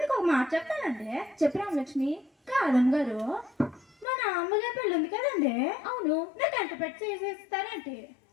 ఒక మాట చెప్తానండి. చెప్పు రామలక్ష్మి. కాదమ్మగారు, మన అమ్మగారు పెళ్ళి ఉంది కదండి. అవును. నాకు ఎంట పెట్టి చేసేస్తారంటే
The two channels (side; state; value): right; drops out; at 4.0 s